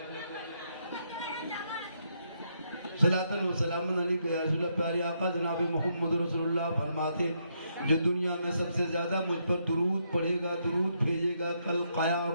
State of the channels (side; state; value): both; inverted; correlation -0.77